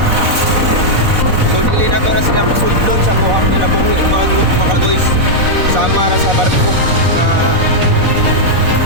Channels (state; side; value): late; left; 4.0 ms